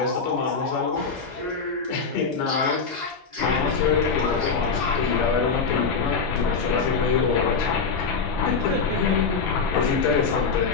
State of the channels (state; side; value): quieter; right; 5.1 dB